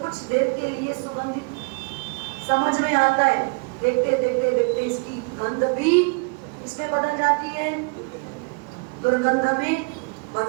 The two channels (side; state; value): left; quieter; 33.5 dB